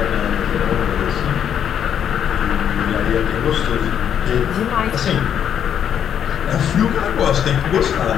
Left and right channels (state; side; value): quieter; right; 8.9 dB